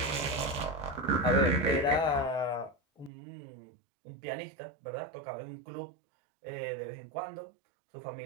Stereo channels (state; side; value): drops out; left; at 3.1 s